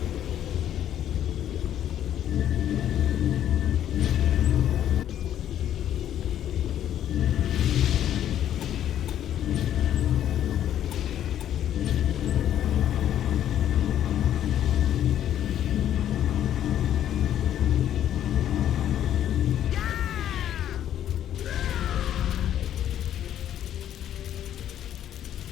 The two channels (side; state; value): right; quieter; 10.9 dB